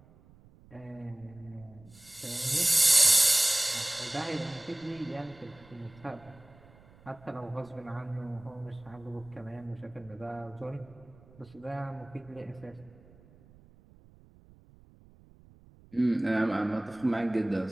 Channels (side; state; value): right; noise; rumble, 25 dB below the sound